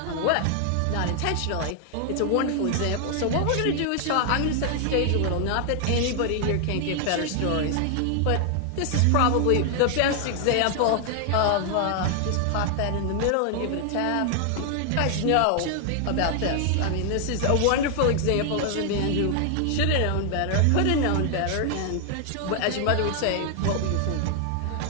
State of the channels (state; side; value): different; both; correlation 0.00